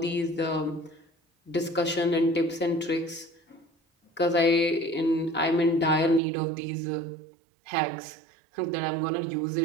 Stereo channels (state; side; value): drops out; left; at 6.2 s